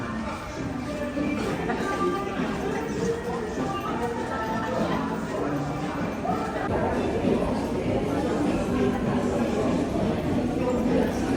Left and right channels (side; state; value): both; identical; correlation 1.00